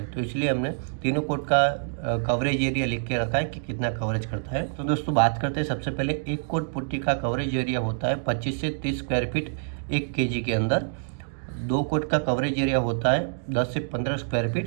तो इसलिए हमने तीनों कोट का कवरेज एरिया लिख के रखा है कि कितना कवरेज करता है। तो दोस्तों बात करते हैं सबसे पहले एक कोट पुट्टी का कवरेज एरिया होता है 25 से 30 स्क्वायर फीट 1 kg के अंदर। 2 कोट का कवरेज एरिया होता है 10 से 15 स्क्वायर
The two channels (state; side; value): silent; left; digital silence